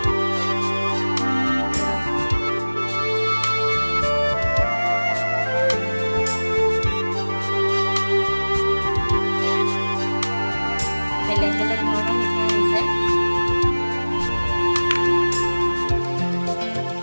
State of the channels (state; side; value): inverted; both; correlation -1.00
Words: বেলেগ বেলেগ ধৰণৰ মিঠাই দিছে।